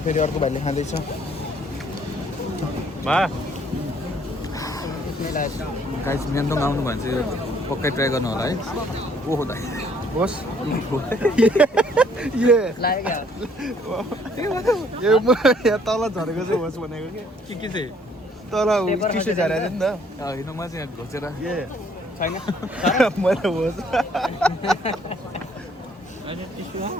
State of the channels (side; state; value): both; normal; correlation 0.63